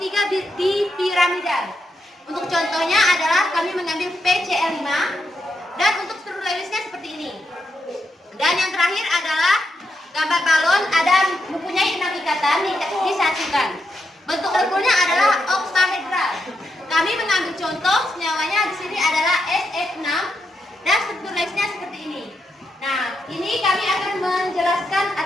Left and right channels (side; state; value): both; normal; correlation 0.83